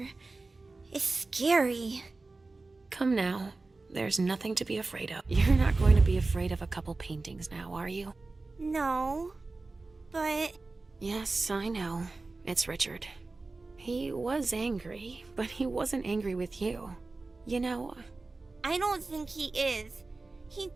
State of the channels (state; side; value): quieter; left; 3.5 dB